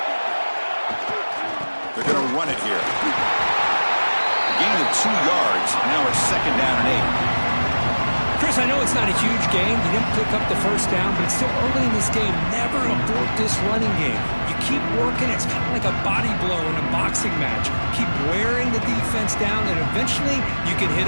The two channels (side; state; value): both; inverted; correlation -1.00